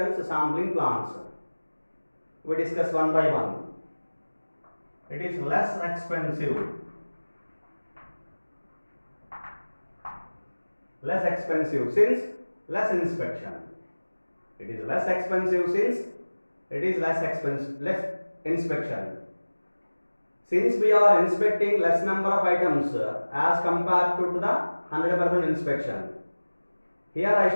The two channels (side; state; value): both; inverted; correlation -1.00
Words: sampling plans. We discuss one by one. It is less expensive. Less expensive since less inspection. It is less expensive since it is less inspection. Since we are inspecting less number of items as compared to the 100% inspection. Here I